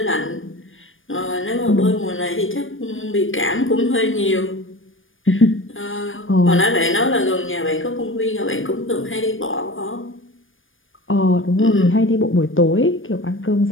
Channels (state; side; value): late; right; 0.58 ms